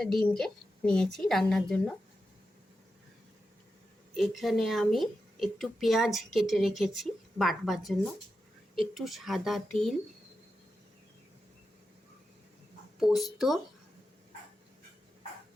ডিমকে নিয়েছি রান্নার জন্য। এখানে আমি একটু পেঁয়াজ কেটে রেখেছি বাটবার জন্য, একটু সাদা তিল, পোস্ত,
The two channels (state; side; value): normal; both; correlation 0.89